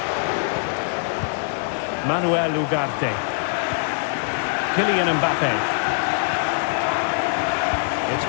Manuel Ugarte. Kylian Mbappe. It's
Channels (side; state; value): right; silent; digital silence